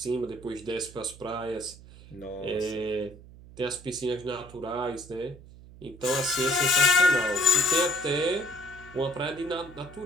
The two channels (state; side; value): noise; right; hum, 19 dB below the sound